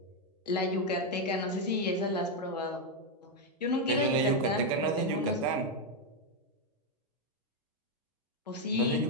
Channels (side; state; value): both; normal; correlation 0.03